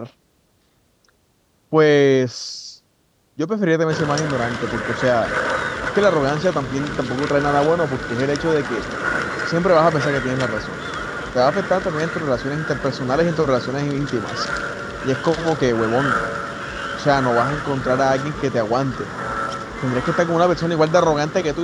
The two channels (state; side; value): identical; both; correlation 1.00